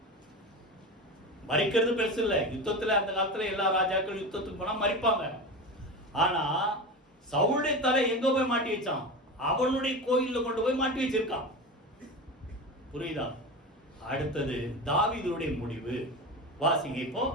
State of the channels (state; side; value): normal; both; correlation 0.25